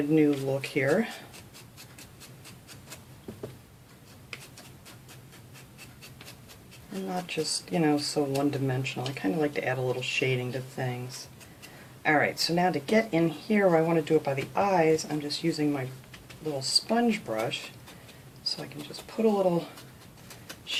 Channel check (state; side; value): identical; both; correlation 1.00